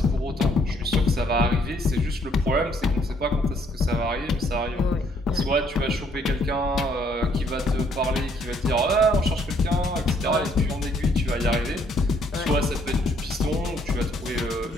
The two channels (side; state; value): both; normal; correlation 0.67